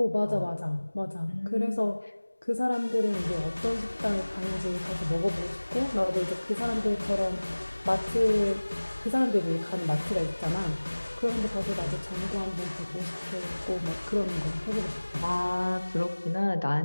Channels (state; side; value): inverted; both; correlation -1.00